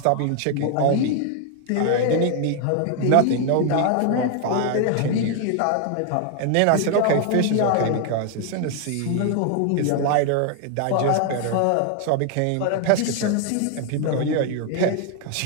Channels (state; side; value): different; both; correlation 0.00